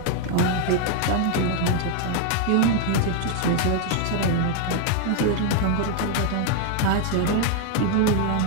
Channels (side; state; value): both; different; correlation 0.01